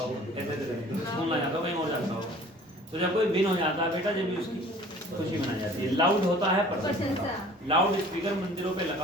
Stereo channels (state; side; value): normal; both; correlation 0.49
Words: हो, ऐसे स्कूल ना जाता हो, कहीं और जाता हो। तो जब कोई विन हो जाता है बेटा, जब भी उसकी खुशी मनाई जाती है। लाउड होता है प्रशंसा, लाउड स्पीकर मंदिरों पे